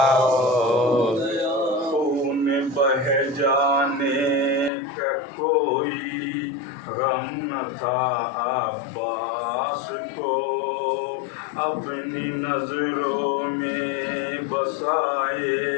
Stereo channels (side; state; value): right; drops out; at 4.7 s